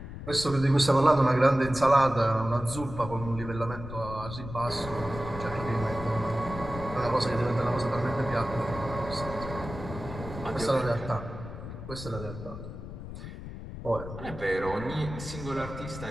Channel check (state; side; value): noise; left; rumble, 10 dB below the sound